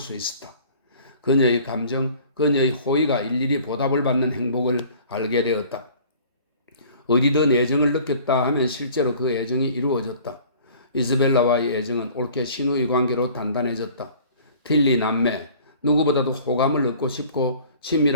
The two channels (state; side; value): inverted; both; correlation -0.49